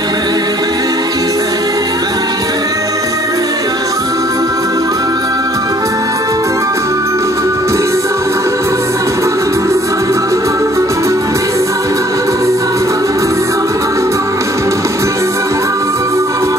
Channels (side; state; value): both; normal; correlation 0.59